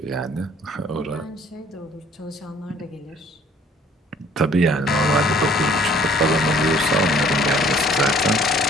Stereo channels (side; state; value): both; normal; correlation 0.57